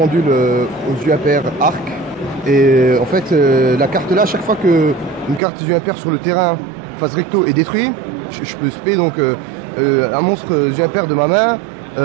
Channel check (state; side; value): drops out; left; at 5.4 s